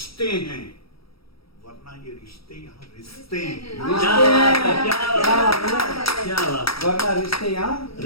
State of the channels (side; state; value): right; late; 0.75 ms